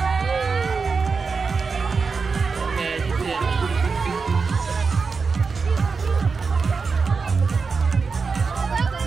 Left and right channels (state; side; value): quieter; left; 4.9 dB